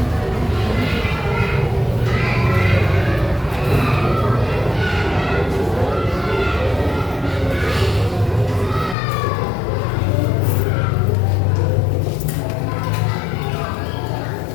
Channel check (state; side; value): drops out; right; at 9.0 s